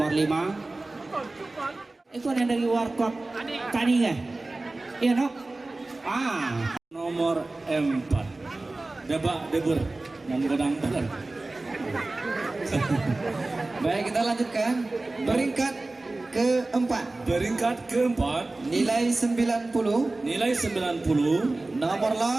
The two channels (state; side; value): quieter; left; 3.1 dB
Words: 5. Itu yang dari warkop tani ya? Iya no? Nomor 4 Debur menggodang badan. Baik, kita lanjutkan. Peringkat keempat. Peringkat keempat Nilai 90. nilai 90. Nomor